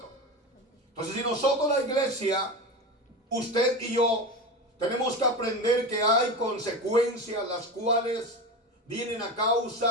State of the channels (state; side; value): normal; both; correlation 0.24